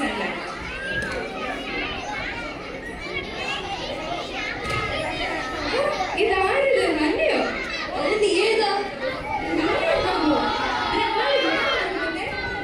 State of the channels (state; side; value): identical; both; correlation 1.00